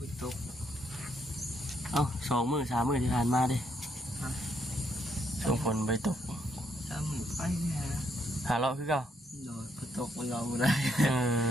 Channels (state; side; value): normal; both; correlation 0.74